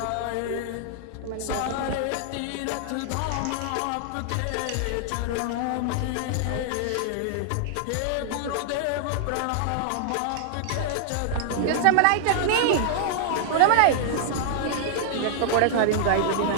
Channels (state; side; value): different; both; correlation -0.01